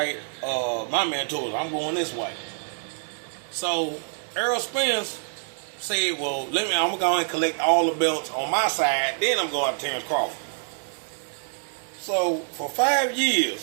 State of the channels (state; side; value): silent; left; digital silence